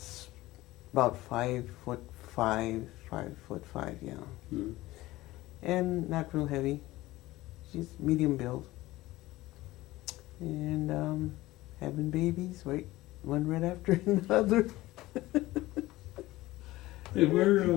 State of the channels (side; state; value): right; quieter; 17.9 dB